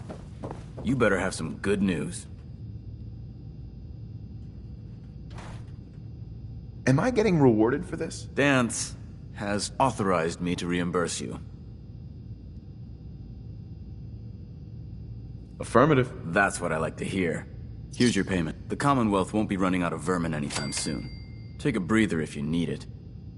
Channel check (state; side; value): identical; both; correlation 1.00